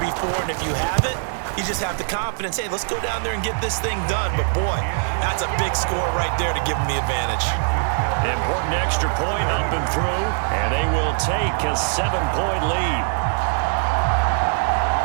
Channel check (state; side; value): silent; left; digital silence